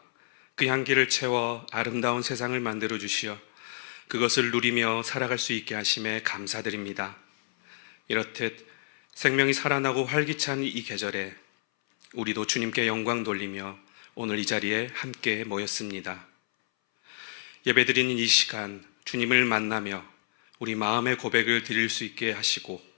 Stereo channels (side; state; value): right; silent; 59 dB below the other